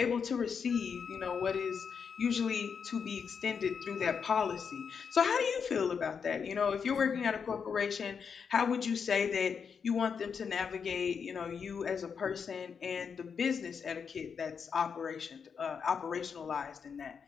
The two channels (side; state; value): right; quieter; 6.4 dB